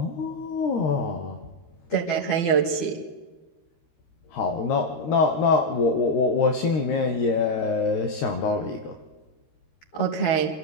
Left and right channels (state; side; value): late; right; 12 ms